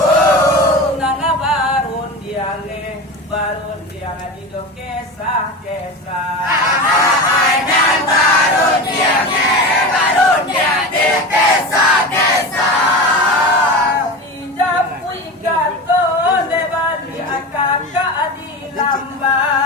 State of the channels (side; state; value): both; normal; correlation 0.27